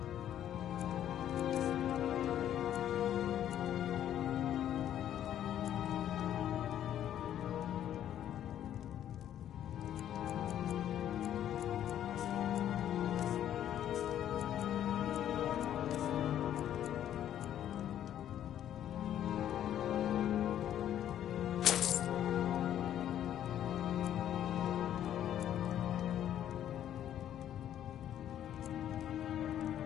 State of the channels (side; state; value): right; quieter; 10.8 dB